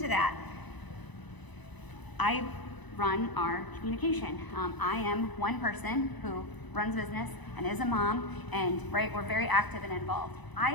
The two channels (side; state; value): right; late; 1.0 ms